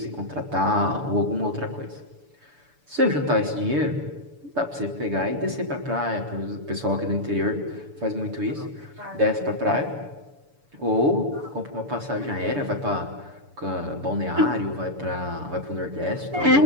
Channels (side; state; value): left; late; 6.9 ms